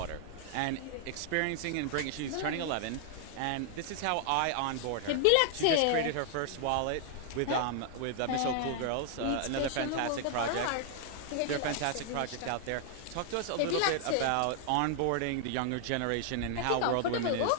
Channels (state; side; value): different; both; correlation 0.00